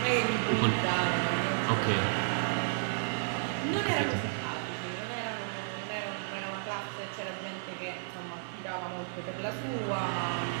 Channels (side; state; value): left; silent; 56 dB below the other